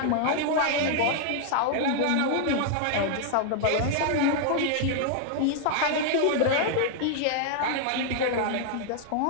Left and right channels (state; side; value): different; both; correlation 0.00